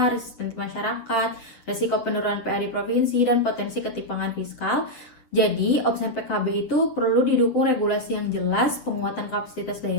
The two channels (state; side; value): late; right; 7.8 ms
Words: resistensi masyarakat, resiko penurunan PAD provinsi, dan potensi ketimpangan fiskal. Jadi, opsen PKB itu perlu didukung regulasi yang jelas, penguatan kapasitas